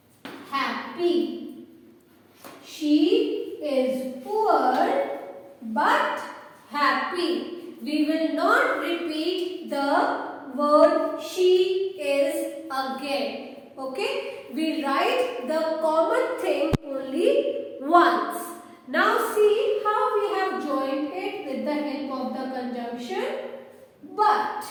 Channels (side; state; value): both; identical; correlation 1.00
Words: happy. She is poor but happy. We will not repeat the word she is again. Okay? We write the common thing only once. Now see how we have joined it with the help of the conjunction but.